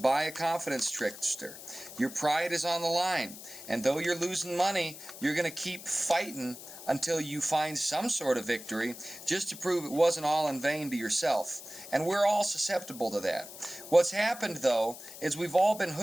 by a confidence trickster, your pride is on the line. And though you're losing money, you're going to keep fighting until you find some sort of victory, just to prove it wasn't all in vain to yourself. And we're all susceptible to that. What's happened, though, is we've all been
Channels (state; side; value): noise; left; hiss, 14 dB below the sound